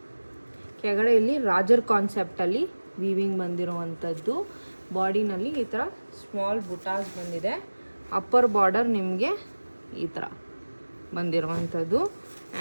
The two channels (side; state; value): both; inverted; correlation -1.00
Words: ಕೆಳಗಡೆ ಇಲ್ಲಿ ರಾಜರ್ ಕಾನ್ಸೆಪ್ಟಲ್ಲಿ ವೀವಿಂಗ್ ಬಂದಿರುವಂಥದ್ದು. ಬಾಡಿನಲ್ಲಿ ಈ ಥರ ಸ್ಮಾಲ್ ಬುಟಾಸ್ ಬಂದಿದೆ. ಅಪ್ಪರ್ ಬಾರ್ಡರ್ ನಿಮಗೆ ಈ ಥರ ಬಂದಿರುವಂಥದ್ದು.